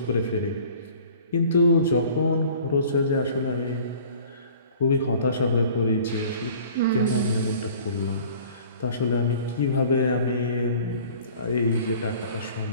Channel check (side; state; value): both; inverted; correlation -0.49